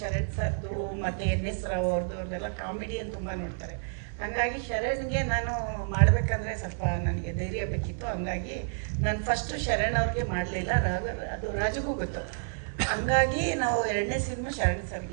ಶರಣ್ ಸರ್ದು, ಮತ್ತು NS ರಾವ್ ಅವ್ರದ್ದೆಲ್ಲ ಕಾಮಿಡಿಯನ್ನು ತುಂಬ ನೋಡ್ತಾರೆ. ಹಂಗಾಗಿ ಶರಣ್ಗೆ ನಾನು ಮಾಡಬೇಕಂದ್ರೆ ಸ್ವಲ್ಪ ನನಗೆ ಧೈರ್ಯ ಬೇಕಿತ್ತು. ಹಂಗಾಗಿ ನಾನು ಫಸ್ಟು ಶರಣ್ ಅವ್ರಿಗೆ ಮಾಡಲಿಲ್ಲ, ಅದು ರಾಜುಗೂ ಗೊತ್ತು. ಹಂಗಾಗಿ ನಾವು 2ನೇ ಸಿನಿಮಾ ಶರಣ್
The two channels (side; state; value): left; silent; 55 dB below the other